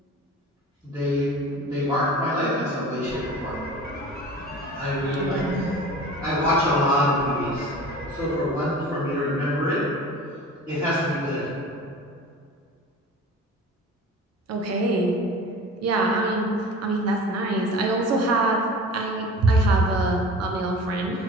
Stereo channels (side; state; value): both; normal; correlation 0.39